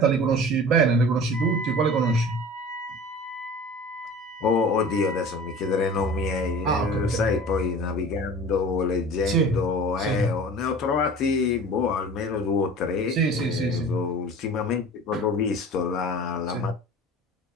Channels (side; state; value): both; normal; correlation 0.40